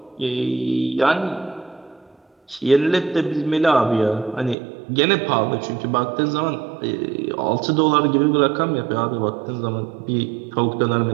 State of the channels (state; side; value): drops out; left; at 4.5 s